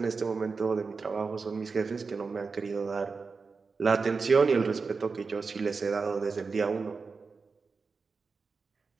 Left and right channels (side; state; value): left; quieter; 4.6 dB